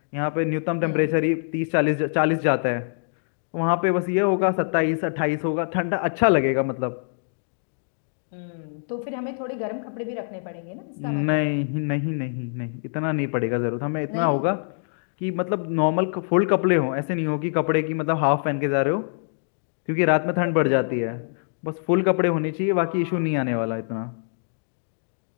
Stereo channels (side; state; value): right; silent; digital silence